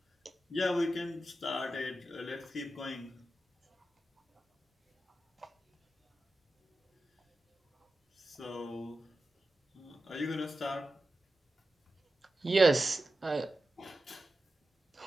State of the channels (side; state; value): both; normal; correlation 0.92